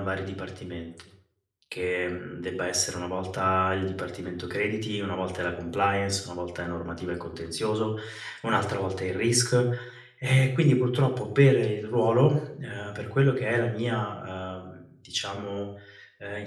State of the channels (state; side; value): identical; both; correlation 1.00